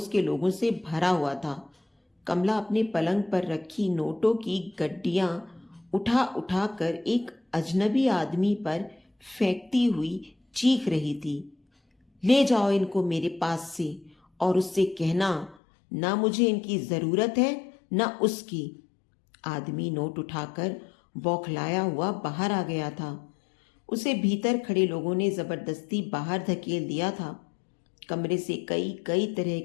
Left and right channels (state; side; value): drops out; right; at 15.6 s